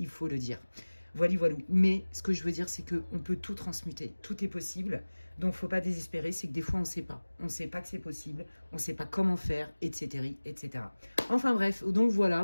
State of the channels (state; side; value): inverted; both; correlation -1.00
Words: faut le dire. Voilà, voilà. Mais ce que je veux dire, c'est qu'on peut tout transmuter, tout est possible. Donc, faut pas désespérer, c'est que des fois, on ne sait pas. On ne sait pas que c'est possible, on ne sait pas comment faire, etc., etc. Enfin bref, donc